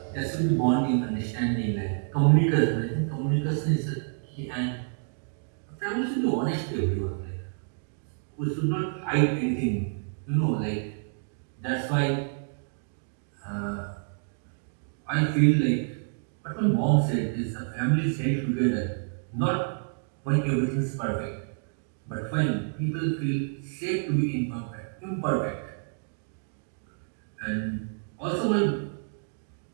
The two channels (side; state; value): left; silent; digital silence